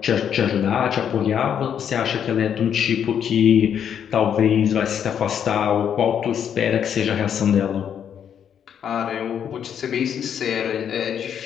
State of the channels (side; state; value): right; quieter; 8.6 dB